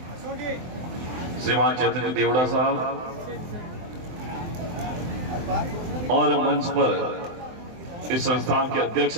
श्रीमान चैतन्य देवड़ा साहब और मंच पर इस संस्थान के अध्यक्ष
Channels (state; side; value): late; left; 23 ms